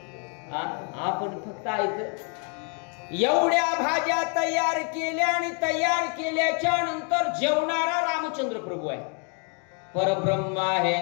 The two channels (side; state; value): right; quieter; 39.0 dB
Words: आपण फक्त ऐकलं. एवढ्या भाज्या तयार केल्या आणि तयार केल्याच्या नंतर जेवणारा रामचंद्र प्रभू आहे, परब्रह्म आहे.